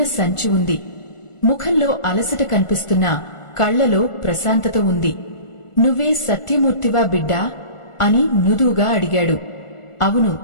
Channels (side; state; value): right; late; 1.4 ms